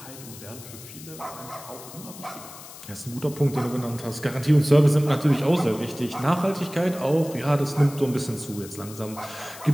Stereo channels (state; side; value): noise; left; hiss, 16 dB below the sound